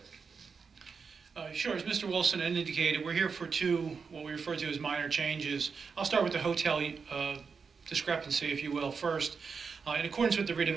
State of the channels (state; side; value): quieter; left; 5.5 dB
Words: asking. Sure, as Mr. Wilson indicated, we're here for two, what we refer to as minor changes. I'll start with the hotel discrepancy, if you will, first. In accordance with the